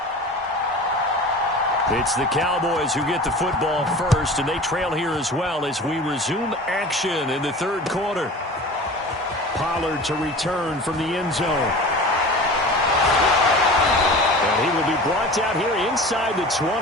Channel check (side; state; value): both; normal; correlation 0.37